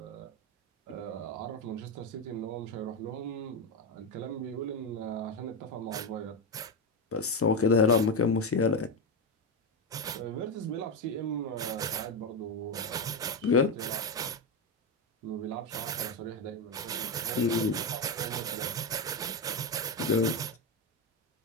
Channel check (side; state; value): both; normal; correlation 0.11